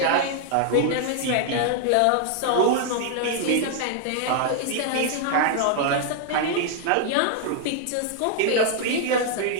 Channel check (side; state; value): both; different; correlation 0.00